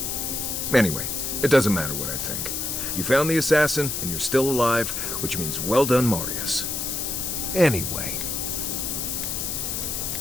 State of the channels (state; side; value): noise; left; hiss, 2 dB below the sound